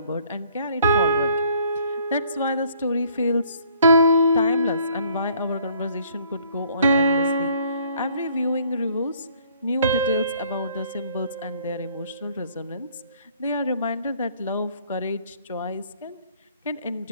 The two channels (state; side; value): inverted; both; correlation -0.61